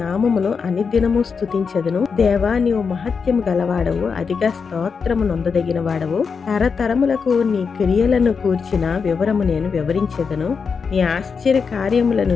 అనుదినము స్తుతించెదను. దేవా, నీవు మహత్యము గలవాడవు, అధిక స్తోత్రము నొందదగిన వాడవు. తరతరములకు నీ క్రియలను కూర్చిన వివరము నేను వివరించెదను. నీ ఆశ్చర్య కార్యములను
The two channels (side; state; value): right; quieter; 5.6 dB